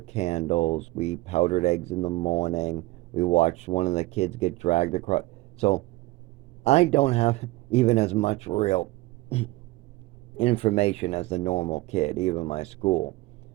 candles. We powdered eggs in the morning. We watched one of the kids get dragged across. So I don't have even as much real information as the normal kid, even my school.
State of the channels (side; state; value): left; quieter; 20.1 dB